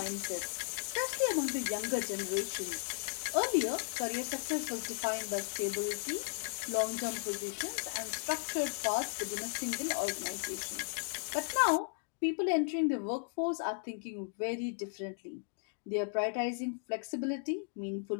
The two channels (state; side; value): silent; right; digital silence